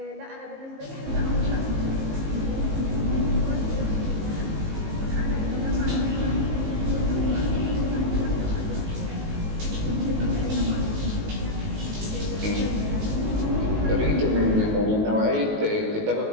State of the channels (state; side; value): late; left; 19 ms